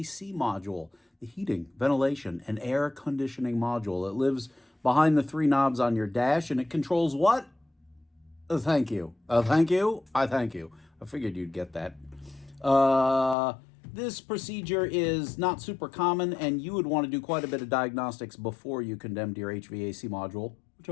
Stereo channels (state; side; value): drops out; right; at 13.4 s